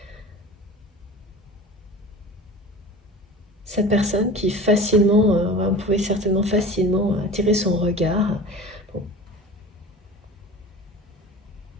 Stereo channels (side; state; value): both; normal; correlation 0.37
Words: Cette personne qui facilement, vous pouvez certainement facilement attirer son regard, bon,